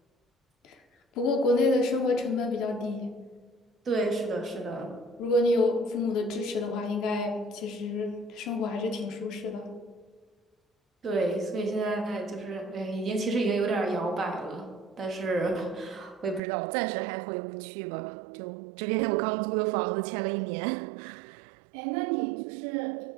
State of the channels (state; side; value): drops out; left; at 16.4 s